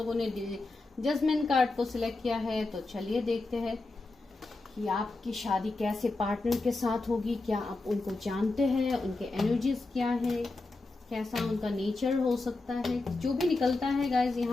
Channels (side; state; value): right; quieter; 3.3 dB